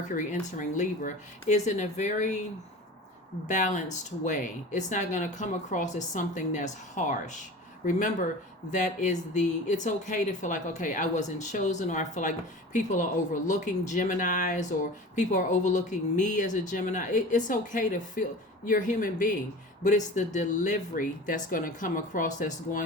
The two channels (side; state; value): both; normal; correlation 0.37